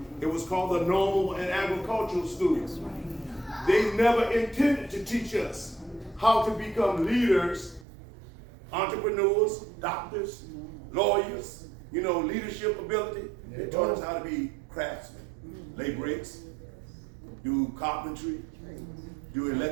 it was called the Normal and Agricultural Schools. Right. They never intended to teach us how to become leaders, entrepreneurs, doctors, lawyers, leadership ability. They taught us how to be craftsmen, lay bricks, do carpentry, do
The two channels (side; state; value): left; drops out; at 7.9 s